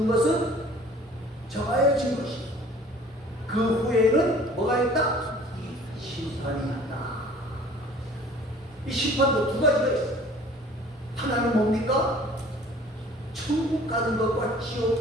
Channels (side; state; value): both; normal; correlation 0.50